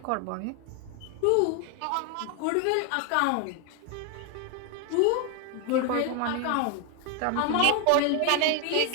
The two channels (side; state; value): both; different; correlation 0.01